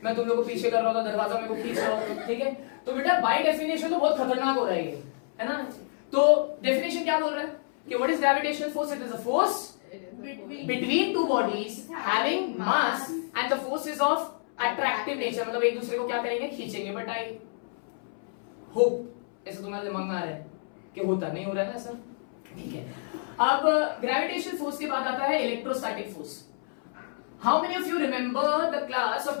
मैं तुम लोग को पीछे कर रहा होता, दरवाजा मेरे को खींच रहा होता, ठीक है। तो बेटा बाय डेफिनेशन तो बहुत खतरनाक हो रहा है ये, है ना। तो डेफिनेशन क्या बोल रहा है कि what is gravitational force, it is a force between two bodies having mass and the force is of attractive nature, मतलब एक दूसरे को क्या करेंगे, खींचेंगे। बट आई होप ऐसा तुम्हारे दिमाग में आ रहा है कि होता नहीं हो रहा है ना सर, ठीक है। अब ग्रेविटेशनल फोर्स के बाद आता है electrostatic force. How many of you remember the class of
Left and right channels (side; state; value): right; silent; 59 dB below the other